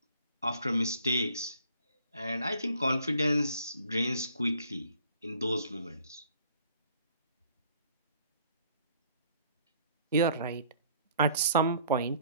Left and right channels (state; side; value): inverted; both; correlation -0.58